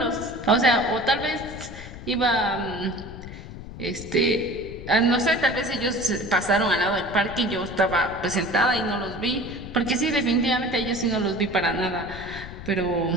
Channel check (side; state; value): left; noise; rumble, 12 dB below the sound